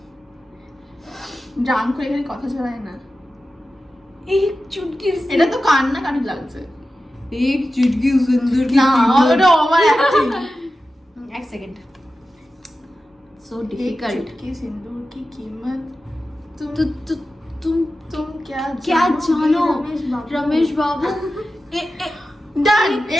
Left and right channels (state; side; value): normal; both; correlation 0.93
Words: ড্রাম করে এখানে কথা ছড়ায় না। এক চুটকি এটা তো কান্নাকাটি লাগছে। এক চুটকি সুন্দর না ওটা ওভার অ্যাক্টিং। এক সেকেন্ড, সো एक डिफिकल्ट। चुटकी सिंदूर की कीमत तुम तुम तुम क्या जानो रमेश रमेश बाबू। ডান।